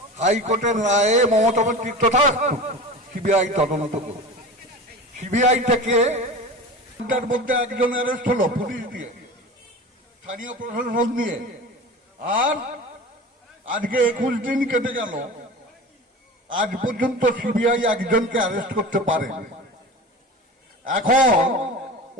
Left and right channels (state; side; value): normal; both; correlation 0.33